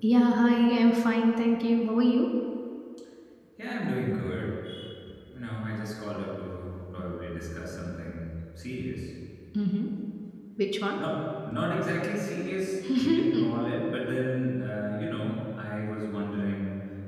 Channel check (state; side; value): identical; both; correlation 1.00